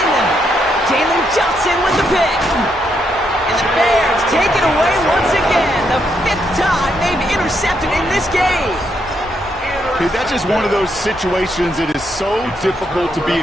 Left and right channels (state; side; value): normal; both; correlation 0.77